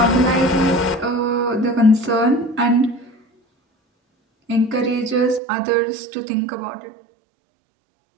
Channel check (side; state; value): left; drops out; at 5.4 s